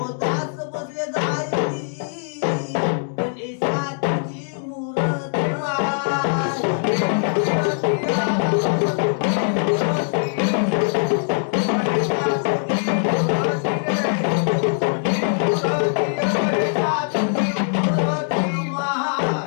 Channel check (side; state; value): right; silent; digital silence